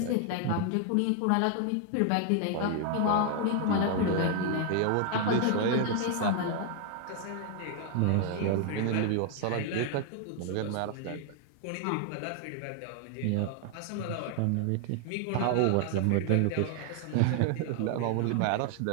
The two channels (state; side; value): different; both; correlation 0.00